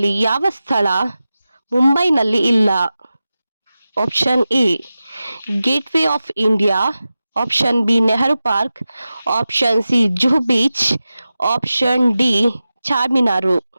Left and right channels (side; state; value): both; inverted; correlation -0.94